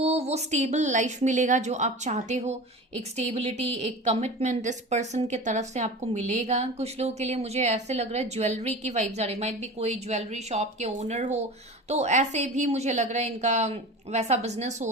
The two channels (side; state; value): both; normal; correlation 0.33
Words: वो स्टेबल लाइफ मिलेगा जो आप चाहते हो, एक स्टेबिलिटी, एक कमिटमेंट इस पर्सन के तरफ से आपको मिलेगा। कुछ लोगों के लिए मुझे ऐसे लग रहा है ज्वेलरी की वाइब्स आ रही, माइट भी कोई ज्वेलरी शॉप के ओनर हो, तो ऐसे भी मुझे लग रहा है इनका वैसा बिजनेस